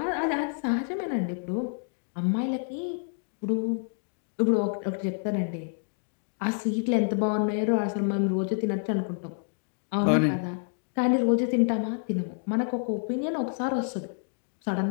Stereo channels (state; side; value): silent; right; digital silence